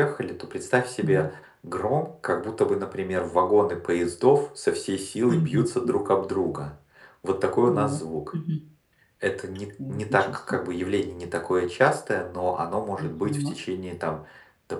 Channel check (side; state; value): both; identical; correlation 1.00